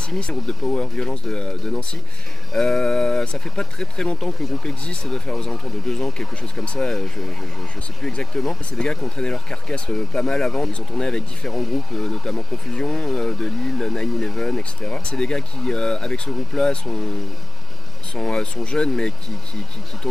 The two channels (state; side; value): normal; both; correlation 0.92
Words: un groupe de power violence de Nancy. Ça fait pas très longtemps que le groupe existe, ça doit faire aux alentours de 2 ans, quelque chose comme ça, je sais plus exactement. C'est des gars qui ont traîné leur carcasse pas mal avant, ils ont tourné avec différents groupes, notamment Confusion, de Lille, 9-11, etc. C'est des gars qui, avec ce groupe-là, sont jeunes mais qui